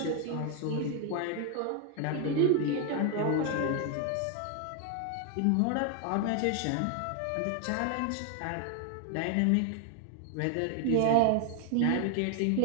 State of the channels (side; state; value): both; different; correlation 0.01